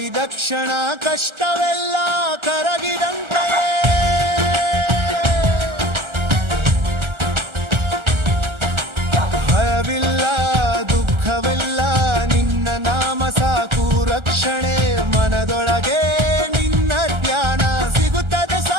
ಕ್ಷಣ ಕಷ್ಟವೆಲ್ಲ ಕರಗಿದಂತೆಯೇ ಭಯವಿಲ್ಲ ದುಃಖವೆಲ್ಲ ನಿನ್ನ ನಾಮ ಸಾಕು ರಕ್ಷಣೆ ಮನದೊಳಗೆ ನಿನ್ನ ಧ್ಯಾನ ಸಿಗುತ್ತದೆ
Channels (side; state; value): left; late; 1.3 ms